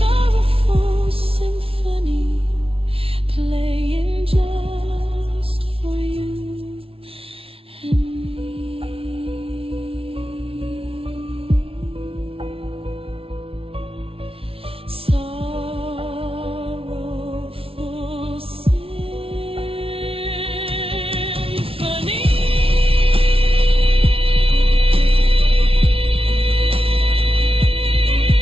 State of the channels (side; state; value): left; late; 0.26 ms